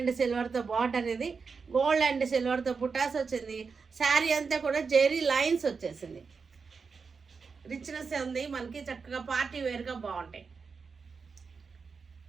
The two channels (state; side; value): quieter; left; 5.2 dB